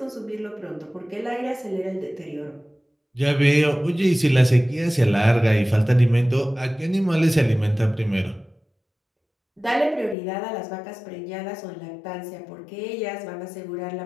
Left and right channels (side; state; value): right; drops out; at 10.2 s